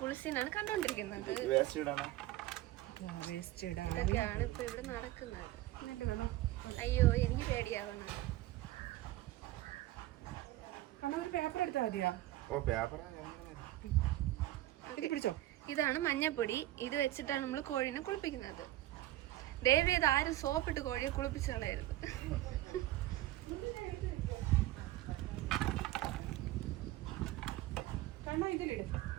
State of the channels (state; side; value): quieter; left; 15.7 dB